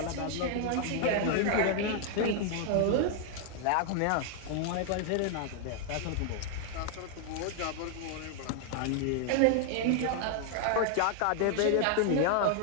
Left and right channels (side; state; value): both; different; correlation 0.00